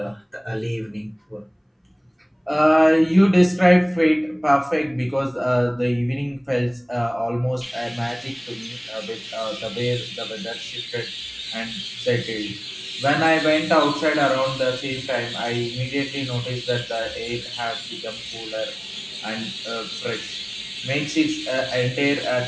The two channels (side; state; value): both; identical; correlation 1.00